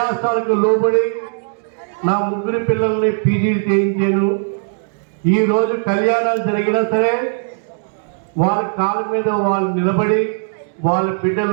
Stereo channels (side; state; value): left; silent; digital silence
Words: లోబడి నా 3 పిల్లల్ని పీజీలు చేయించాను. ఈరోజు కళ్యాణాలు జరిగినా సరే వాళ్ళ కాళ్ళ మీద వాళ్ళు నిలబడి వాళ్ళ